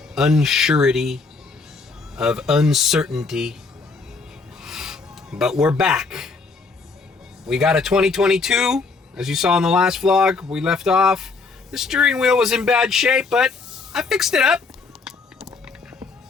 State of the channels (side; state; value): right; quieter; 4.3 dB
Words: unsurety, of uncertainty. But we're back. We got a 2022, as you saw in the last vlog. We left off. The steering wheel was in bad shape, but I fixed it up.